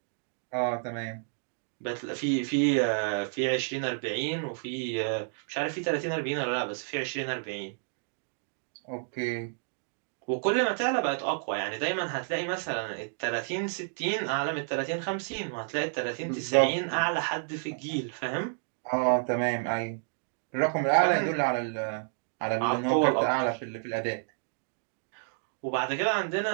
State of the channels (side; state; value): left; silent; digital silence